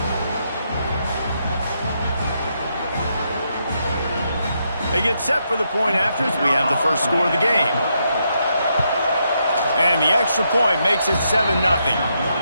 They get set for the point after as we have the first score of the game. And the extra point makes it 7-0.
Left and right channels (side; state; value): both; inverted; correlation -0.79